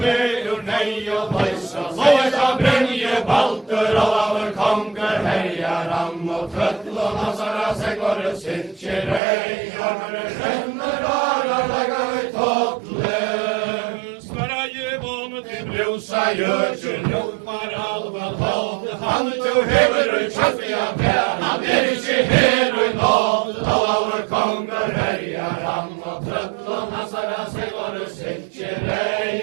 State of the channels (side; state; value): left; drops out; at 9.2 s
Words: vägur nej och bajsa, såja bränje balter, alla vår konkur härjar han och tröttlån, hassarna seglar sitter ej, armor ränner, harar läggar tattlen. Sverige vånde brusa götjel, lopar alva tal, han tog hever och tjaffiga pär, han inte her och nåd, alla vår konkur härjar han och tröttlån, hassarna seglar sitter